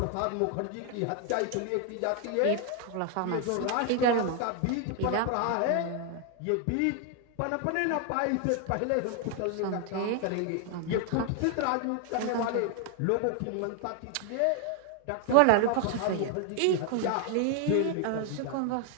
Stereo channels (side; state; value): both; different; correlation 0.00